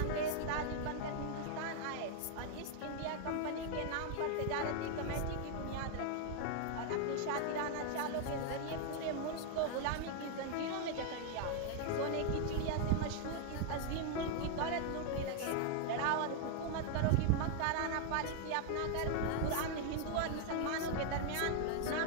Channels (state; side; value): different; both; correlation 0.00